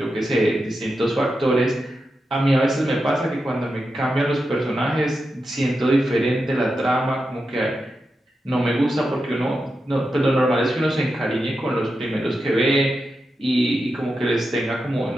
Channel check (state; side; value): normal; both; correlation 0.89